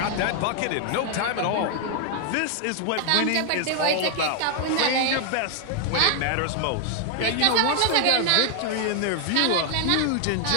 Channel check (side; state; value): both; different; correlation 0.00